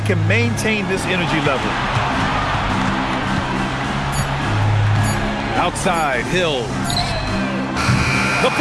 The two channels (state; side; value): identical; both; correlation 1.00